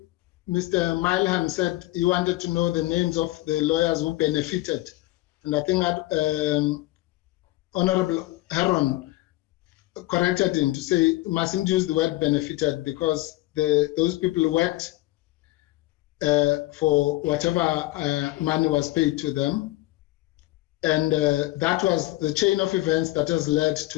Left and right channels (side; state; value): right; quieter; 18.5 dB